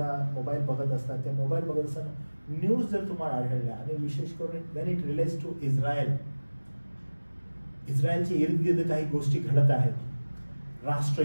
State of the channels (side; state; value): both; inverted; correlation -1.00